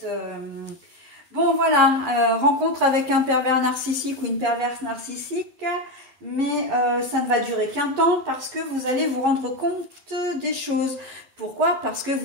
Bon voilà, rencontre avec un pervers narcissique ou une perverse narcissique, mais ça ne va durer qu'un temps parce que vous allez vous rendre compte des choses. Pourquoi? Parce que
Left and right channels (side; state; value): left; late; 12 ms